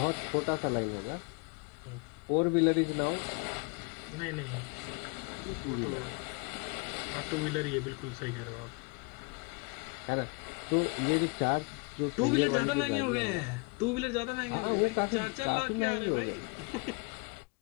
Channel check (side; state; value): right; quieter; 30.8 dB